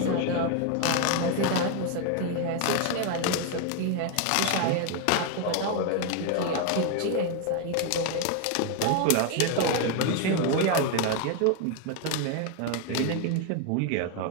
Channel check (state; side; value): different; both; correlation 0.01